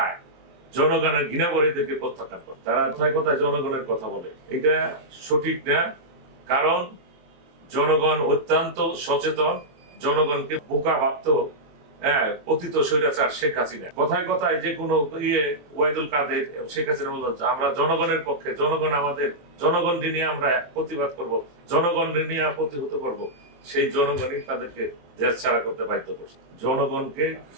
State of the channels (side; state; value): left; late; 23 ms